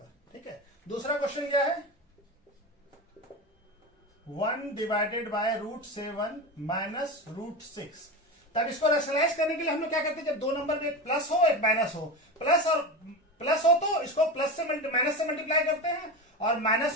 ठीक है। दूसरा क्वेश्चन क्या है, 1/√7 माइनस √6। तब इसको रैशनलाइज करने के लिए हम लोग क्या करते हैं, जब दो नंबर में एक प्लस हो एक माइनस हो, प्लस हो तो इसको प्लस से माइनस से मल्टीप्लाई करते हैं, और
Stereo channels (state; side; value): normal; both; correlation 0.23